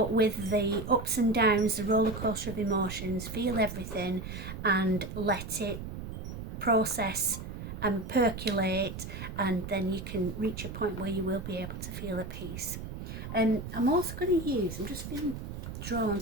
with the ups and downs, the roller coaster of emotions, feel everything and let it process and percolate, and then you can reach a point where you will be able to feel at peace. And I'm also going to use, I'm just feeling drawn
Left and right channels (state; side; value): noise; right; rumble, 8 dB below the sound